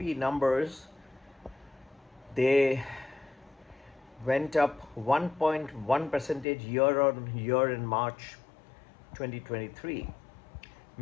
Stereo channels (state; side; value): drops out; right; at 6.5 s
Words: numbers, they went up 1.1 percentage year on year in March 2023,